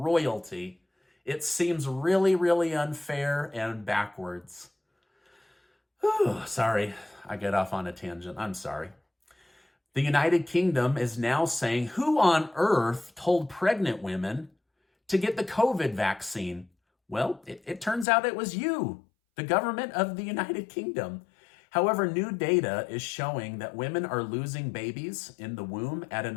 It seems really, really unfair and backwards. Whew, sorry, I get off on a tangent. I'm sorry. The United Kingdom is now saying, who on earth told pregnant women to get the COVID vaccine? Well, it turns out it was you, the government of the United Kingdom. However, new data is showing that women are losing babies in the womb at an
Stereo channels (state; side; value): drops out; right; at 18.1 s